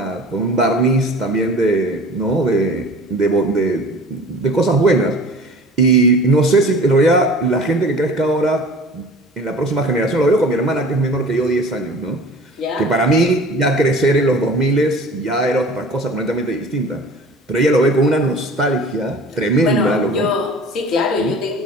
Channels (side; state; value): both; normal; correlation 0.43